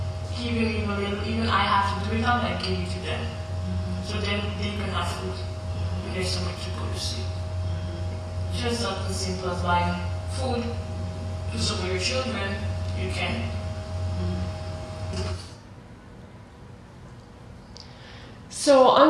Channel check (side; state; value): both; identical; correlation 1.00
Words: give them even a little. Even I have to do it out, I give it to them. So then they can have food when there's so much to go to sleep. Just something simple as buying food to support your children, you can. So